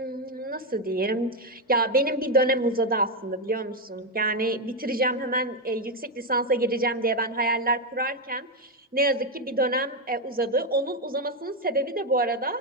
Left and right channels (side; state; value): both; normal; correlation 0.06